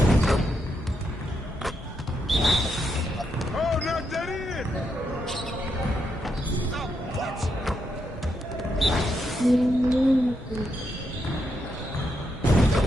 Oh, knock that in. Oh, what?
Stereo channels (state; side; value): normal; both; correlation 0.81